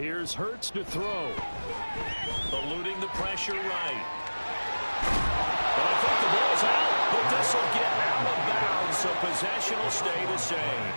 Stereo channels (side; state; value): both; inverted; correlation -1.00